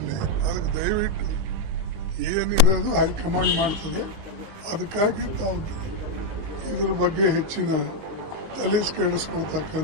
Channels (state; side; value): late; left; 19 ms